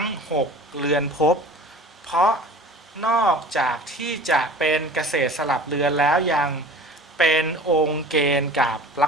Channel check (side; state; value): both; normal; correlation 0.42